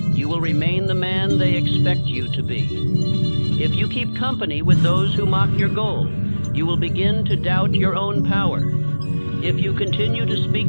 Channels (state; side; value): inverted; both; correlation -1.00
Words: you will remain the man they expect you to be. If you keep company with those who mock your goal, you will begin to doubt your own power. If you continue to